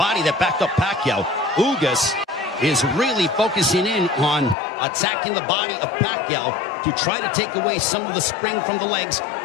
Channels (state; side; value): drops out; right; at 4.5 s